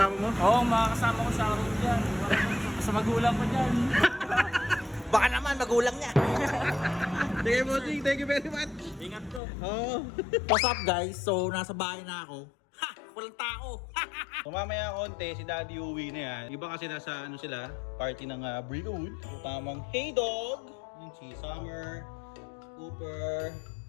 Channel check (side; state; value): right; drops out; at 9.4 s